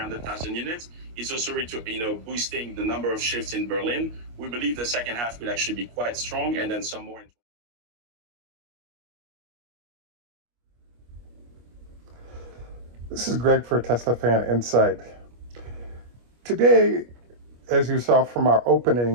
units. It's also boosting the number of shifts in Berlin. We believe the second half will actually be quite strong, and then some more. This is Greg for Teslafaninsight. Today, as you saw from our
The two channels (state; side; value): late; left; 25 ms